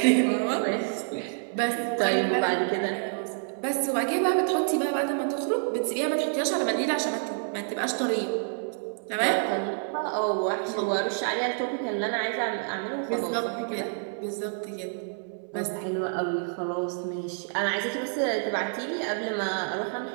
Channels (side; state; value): left; silent; 59 dB below the other